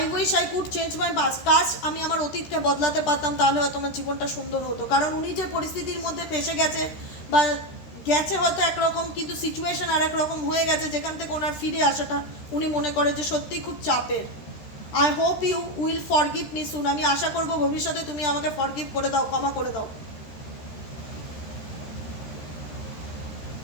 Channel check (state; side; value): late; right; 13 ms